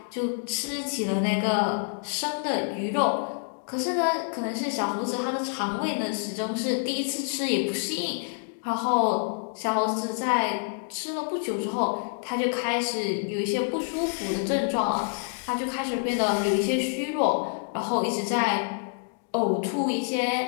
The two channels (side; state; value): right; silent; 59 dB below the other